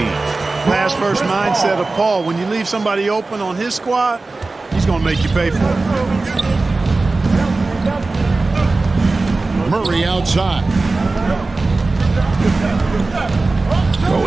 Pass first mindset of Paul. When you leave somebody open on his squad, he's going to make you pay for it. Murray outside.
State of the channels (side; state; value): left; quieter; 3.5 dB